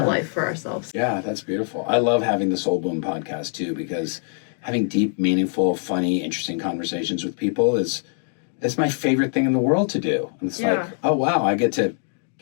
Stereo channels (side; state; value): right; silent; 57 dB below the other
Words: life for ourselves. Yeah, that's beautiful. I love having the Soul Boom podcast too, because having deep, meaningful, funny, interesting conversations with people is my favorite thing in the world to do. And it's like, oh wow, I get to